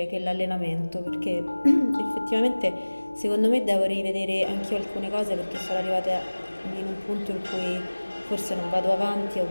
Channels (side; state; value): both; inverted; correlation -1.00